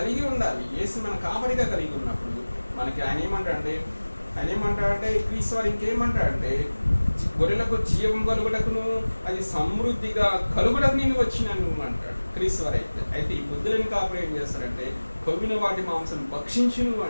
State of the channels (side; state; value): both; inverted; correlation -1.00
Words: ఉండాలి. యేసు మన కాపరిగా కలిగి ఉన్నప్పుడు మనకి ఆయన ఏమంటాడంటే క్రీస్తు వారు ఇంకేమంటాడంటే గొర్రెలకు జీవం కలుగుటకును అది సమృద్ధిగా కలుగుటకు నేను వచ్చినాను అంటాడు క్రీస్తు వారు. అయితే ఈ బుద్ధులను కాపురం ఏం చేస్తారంటే కొవ్విన వాటి మాంసం భక్షించును